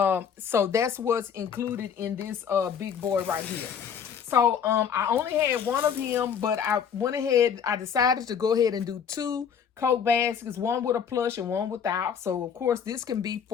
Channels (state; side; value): quieter; right; 7.5 dB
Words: that's what's included in this big board right here. So I only had 1 of him, but I went ahead, I decided to go ahead and do 2 Coke baskets, 1 with a plush and 1 without. So of course this can be